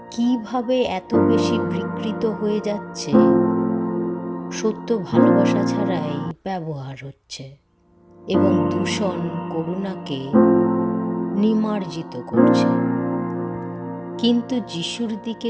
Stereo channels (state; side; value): identical; both; correlation 1.00